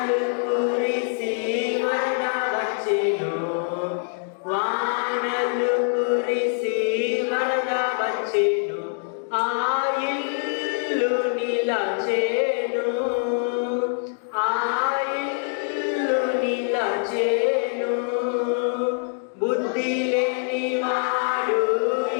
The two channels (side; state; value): right; silent; 60 dB below the other